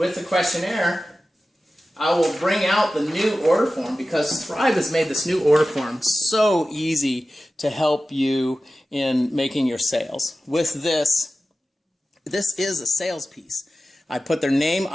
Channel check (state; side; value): normal; both; correlation 0.95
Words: the questionnaire, I will bring out the new order form, because Thrive has made this new order form so easy to help you in making your sales. With this is a sales piece. I put their name,